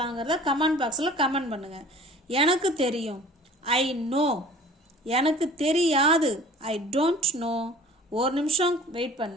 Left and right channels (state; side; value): normal; both; correlation 0.46